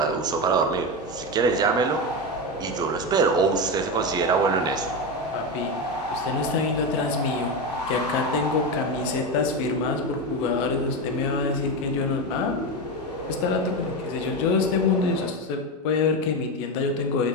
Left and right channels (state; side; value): normal; both; correlation 0.15